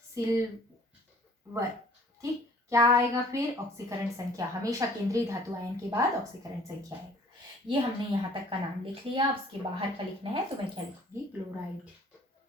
सिल्वर। ठीक, क्या आएगा फिर, ऑक्सीकरण संख्या। हमेशा केंद्रीय धातु आयन के बाद ऑक्सीकरण संख्या आएगा। ये हमने यहाँ तक का नाम लिख लिया। अब उसके बाहर का लिखना है तो मैं क्या लिखूंगी, क्लोराइड।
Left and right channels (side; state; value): both; normal; correlation 0.54